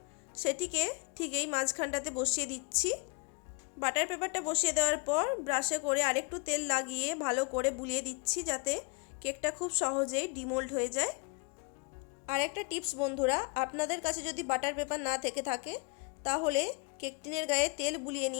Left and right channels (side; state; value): right; quieter; 32.9 dB